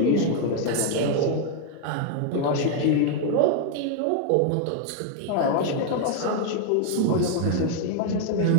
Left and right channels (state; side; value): different; both; correlation 0.00